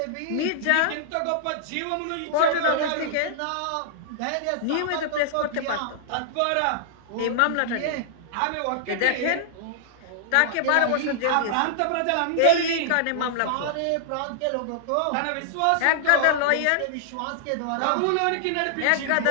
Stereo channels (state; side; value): different; both; correlation -0.01